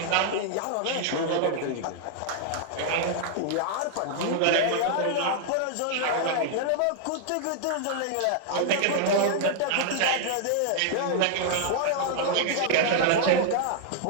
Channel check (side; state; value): both; different; correlation -0.01